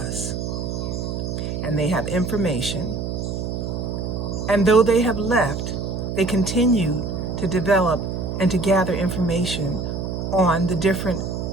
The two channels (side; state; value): right; noise; hum, 3 dB below the sound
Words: and they have information. And though they have left, they continue to develop and to gather information on the different